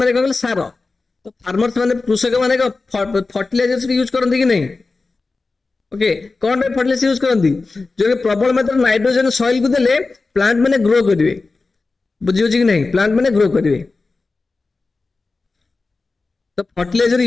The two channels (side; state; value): right; quieter; 3.8 dB